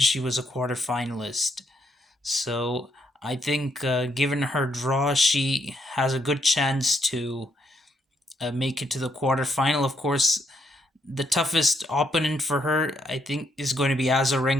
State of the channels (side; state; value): both; normal; correlation 0.76